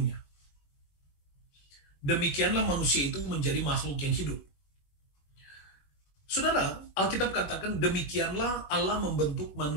Demikianlah manusia itu menjadi makhluk yang hidup. Saudara, Alkitab katakan demikianlah Allah membentuk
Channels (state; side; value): late; right; 21 ms